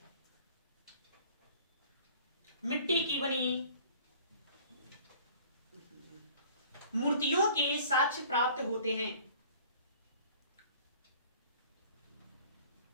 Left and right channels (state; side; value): inverted; both; correlation -0.50